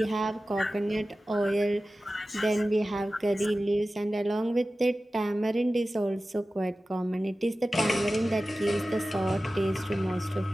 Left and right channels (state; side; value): normal; both; correlation 0.95